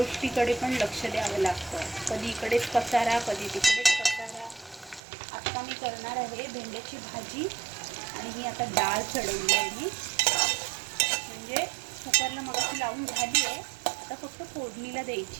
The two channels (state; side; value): drops out; left; at 5.0 s